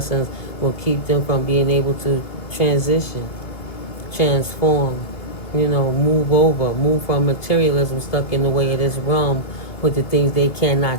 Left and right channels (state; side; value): late; right; 2.3 ms